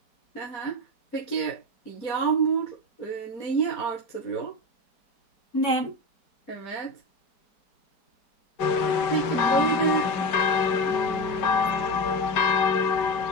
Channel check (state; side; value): late; right; 5.1 ms